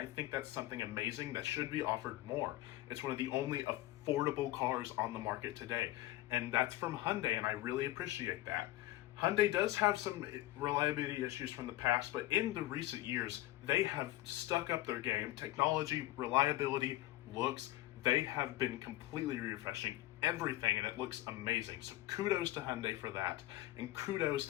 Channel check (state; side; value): quieter; right; 16.2 dB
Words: think that's something amazing that should be offered more. It's one of the only affordable cars on the market today, and that's from Hyundai, and I really appreciate that. Hyundai does have some reliability issues from the past, but in the recent years, they have stuck up their game. Technology, reliability, looks, they have been completely refreshing everything, and it looks amazing. So kudos to Hyundai for that, and kudos